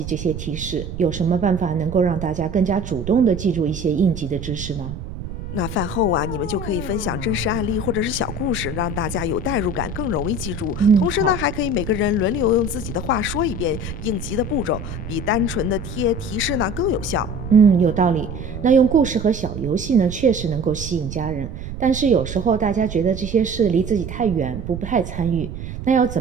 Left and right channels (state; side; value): noise; right; rumble, 8 dB below the sound